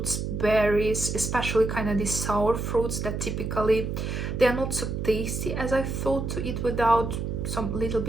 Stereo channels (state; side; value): noise; right; hum, 3 dB below the sound